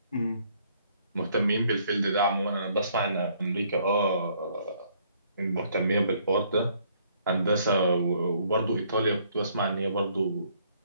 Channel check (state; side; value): inverted; both; correlation -0.65